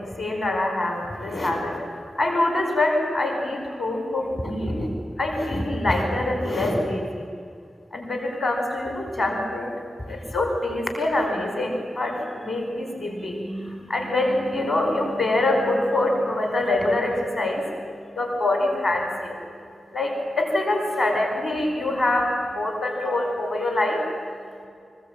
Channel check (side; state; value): both; normal; correlation 0.87